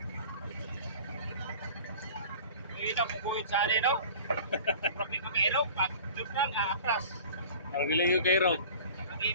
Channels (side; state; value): both; inverted; correlation -0.42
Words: Hindi na pupuwit sa anin, no? Problema kay Erog, pag doon lang, atras. Maragili yung kay Erog.